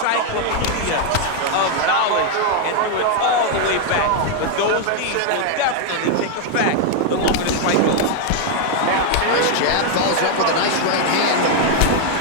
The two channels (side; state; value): both; different; correlation 0.00